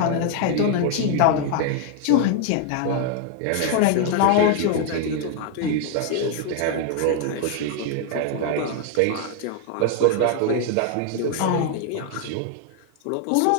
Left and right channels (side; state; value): both; different; correlation 0.00